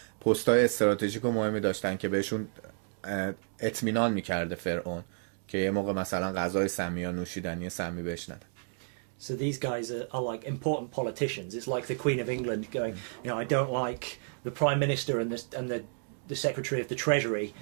پستای استراتژیک و مهمی داشتن که بهشون اطمینان میکرده فرعون که یه موقع مثلا غذای سمی یا نوشیدنی سمی بهش نده. So these guys are like important politicians. It's like the Queen of England going, you know, I don't like the Prime Minister and the Secretary of the Treasury,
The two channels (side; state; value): left; silent; digital silence